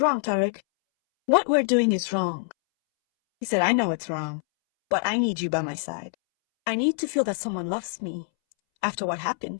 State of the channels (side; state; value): right; silent; 62 dB below the other